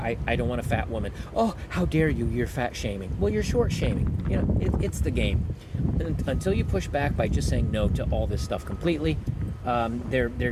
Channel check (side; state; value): both; identical; correlation 1.00